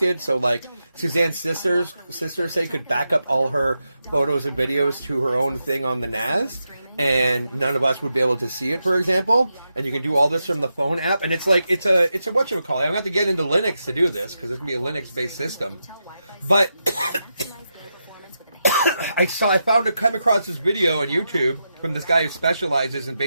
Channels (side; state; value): both; inverted; correlation -0.87